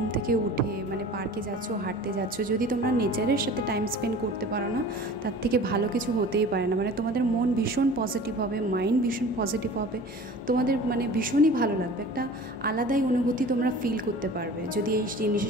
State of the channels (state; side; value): normal; both; correlation 0.42